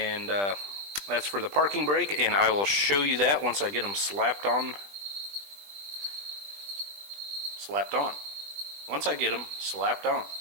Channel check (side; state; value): left; late; 20 ms